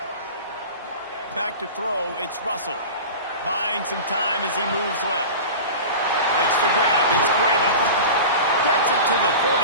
Back to throw, it's Russell. Buying some time as he moves left. Makes the grab, it's Cueva. Gets it to the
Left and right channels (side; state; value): both; inverted; correlation -0.32